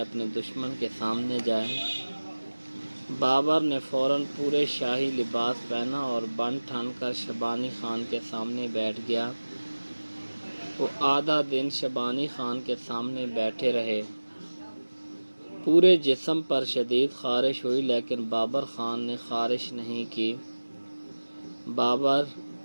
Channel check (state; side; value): inverted; both; correlation -1.00